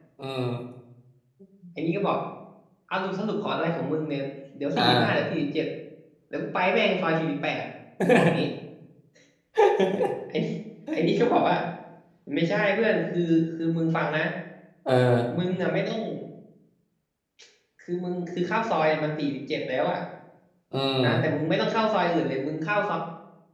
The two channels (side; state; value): both; identical; correlation 1.00